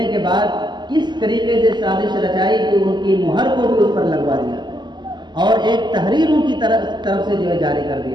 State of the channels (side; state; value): left; late; 0.21 ms